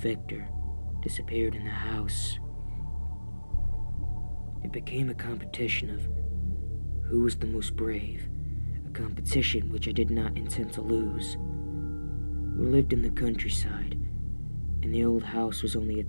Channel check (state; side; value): inverted; both; correlation -1.00